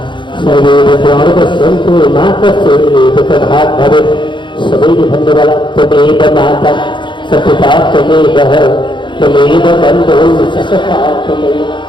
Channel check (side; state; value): right; late; 0.23 ms